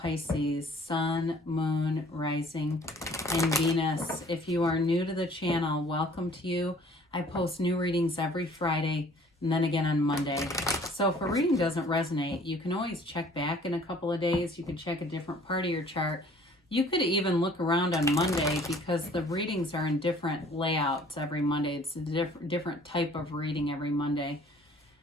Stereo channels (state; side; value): normal; both; correlation 0.54